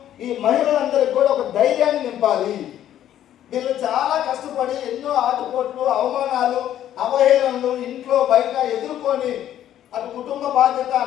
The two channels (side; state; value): right; quieter; 11.4 dB